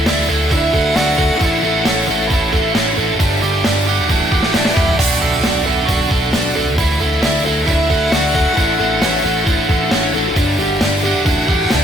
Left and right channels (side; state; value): both; normal; correlation 0.70